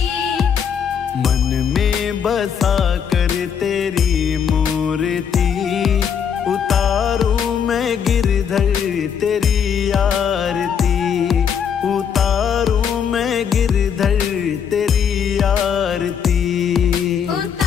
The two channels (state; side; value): quieter; right; 7.6 dB